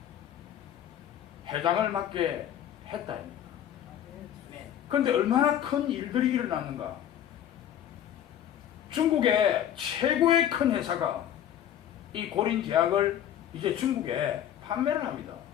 회장을 맡게 했다. 아멘. 그런데 얼마나 큰 일들이 일어났는가. 중국의 최고의 큰 회사가 이 고린제약을 이제 중국에 판매를 합니다.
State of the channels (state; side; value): quieter; right; 10.5 dB